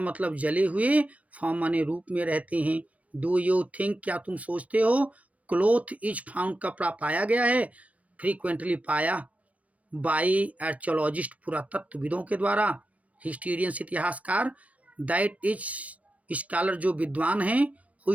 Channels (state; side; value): late; left; 0.067 ms